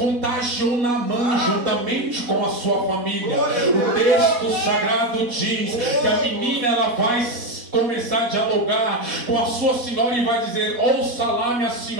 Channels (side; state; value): left; late; 4.1 ms